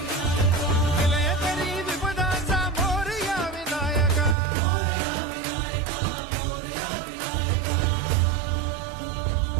विलयकरी विपदांचा मोरया विनायक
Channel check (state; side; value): drops out; left; at 4.4 s